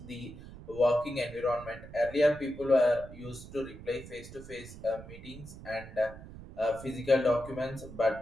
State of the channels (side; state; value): right; noise; rumble, 15 dB below the sound